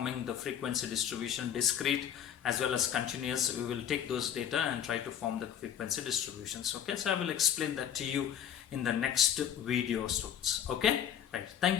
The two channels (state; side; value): quieter; right; 9.5 dB